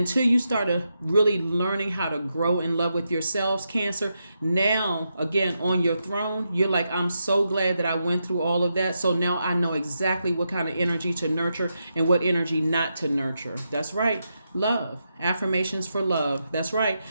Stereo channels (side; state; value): both; inverted; correlation -0.85